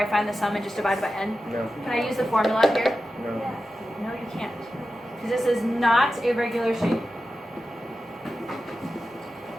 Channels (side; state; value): both; normal; correlation 0.92